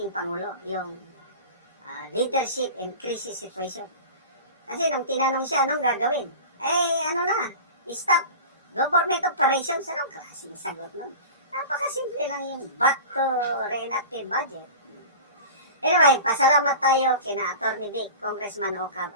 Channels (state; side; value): inverted; both; correlation -0.35